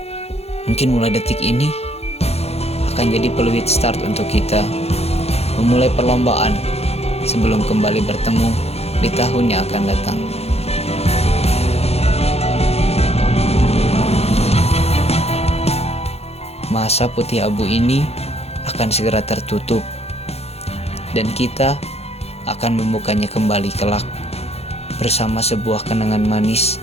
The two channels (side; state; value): right; late; 0.30 ms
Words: Mungkin mulai detik ini akan jadi peluit start untuk kita memulai perlombaan sebelum kembali bertemu di tahun yang akan datang. Masa putih abu ini akan segera tertutup dan kita akan membukanya kembali kelak bersama sebuah kenangan manis